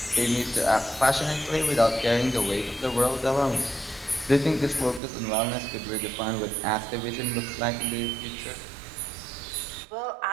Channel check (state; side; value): drops out; left; at 5.0 s